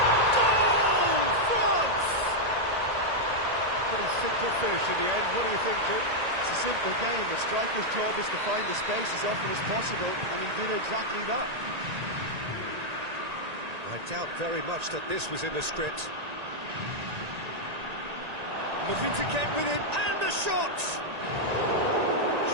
Goal! France! Pretty simple finish in the end. What do you think, Jim? It's a simple game. The striker's job is to find the space as often as possible, and he did exactly that. I doubt very much that this was in the script. Looking to get within, and the shot!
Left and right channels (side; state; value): left; late; 1.9 ms